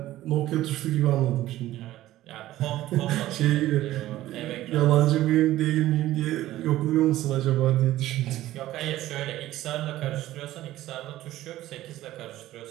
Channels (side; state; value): left; quieter; 14.9 dB